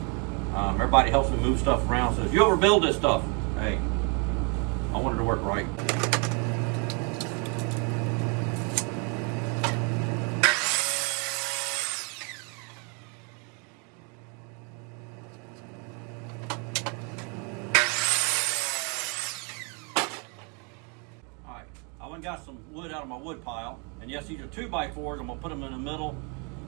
Everybody helps me move stuff around. Says, you overbuild this stuff. Hey, I wanted to work right. Alright, I went and got some wood out of my wood pile, and yes, these are 2x4s. I'm gonna put them in the middle.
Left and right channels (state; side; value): quieter; left; 35.4 dB